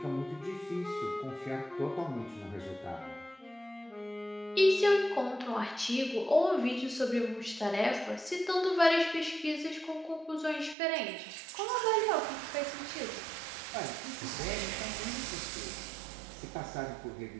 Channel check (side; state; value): left; drops out; at 10.8 s